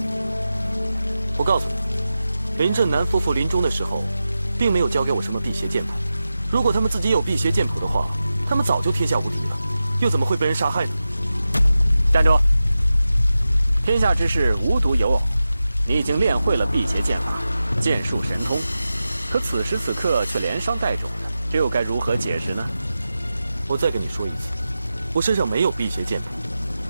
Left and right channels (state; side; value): inverted; both; correlation -0.93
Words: 我告诉你，林震南夫妇临终的时候，并没有交给我什么辟邪剑谱。如果他们自己有辟邪剑谱的话，他们早就天下无敌了，又怎么会被人杀害呢？站住！天下之事无独有偶，你已经练会了辟邪剑法，剑术神通，可此时此刻却连伤带肿的，这又该如何解释呢？我再跟你说一次，我身上没有辟邪剑谱。